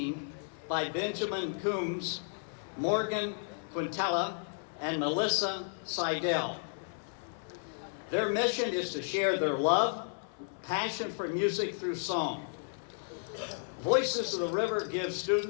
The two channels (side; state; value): right; silent; 56 dB below the other